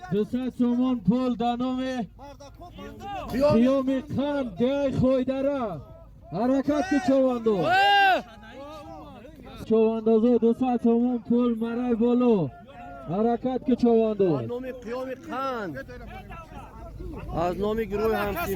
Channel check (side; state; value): both; identical; correlation 1.00